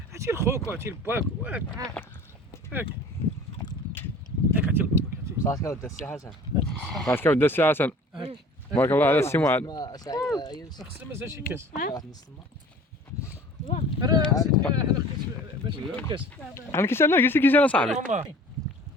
عرفتي لخوك وعرفتي لباك هاك عرفتي لباباك. صافي ودي السي حسن. صافي ودي السي حسن. بارك الله على السي معاذ. خصنا مازال شي كاس. واحد نص راه نسيت حنا باش نجيب كاس. انا كيسالنا قلت كيسالنا صاحبي.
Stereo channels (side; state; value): both; normal; correlation 0.46